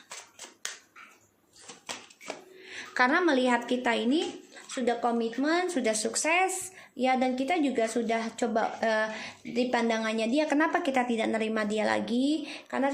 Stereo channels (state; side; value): identical; both; correlation 1.00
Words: Karena melihat kita ini sudah komitmen, sudah sukses ya, dan kita juga sudah coba di pandangannya dia, kenapa kita tidak nerima dia lagi? Karena